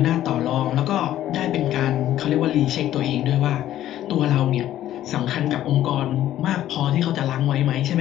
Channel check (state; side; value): quieter; right; 12.7 dB